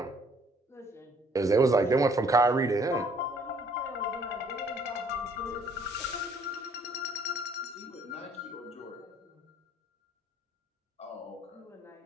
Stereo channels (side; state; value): both; normal; correlation 0.61